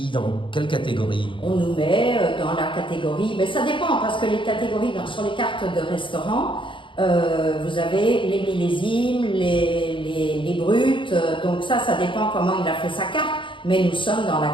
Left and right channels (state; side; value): late; right; 0.24 ms